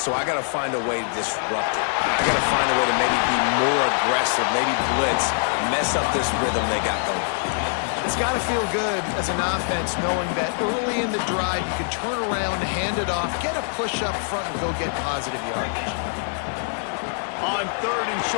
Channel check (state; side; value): silent; right; 63 dB below the other